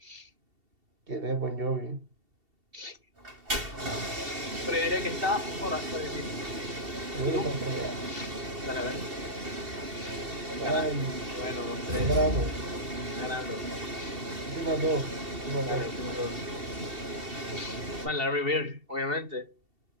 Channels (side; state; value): left; late; 2.7 ms